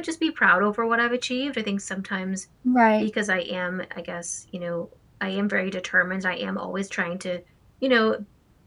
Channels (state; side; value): identical; both; correlation 1.00